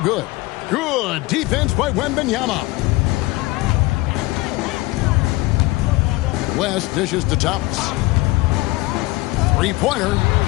Good defense by Wembanyama. West dishes to Thomas. Three-pointer.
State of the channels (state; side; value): quieter; right; 20.5 dB